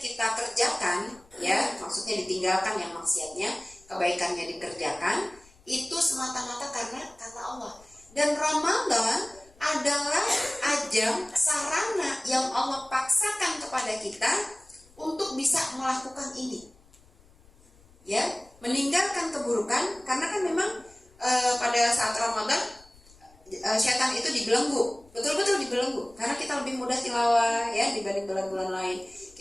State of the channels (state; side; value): noise; left; rumble, 27 dB below the sound